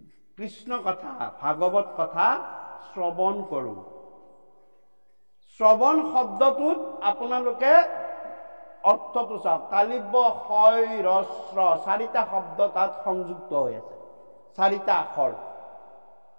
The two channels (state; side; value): inverted; both; correlation -1.00